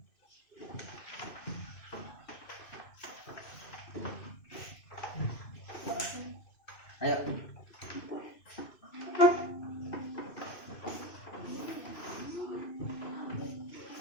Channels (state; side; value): late; right; 2.5 ms